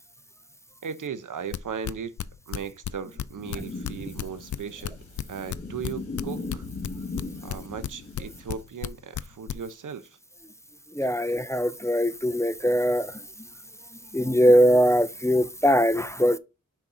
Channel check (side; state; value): both; normal; correlation 0.80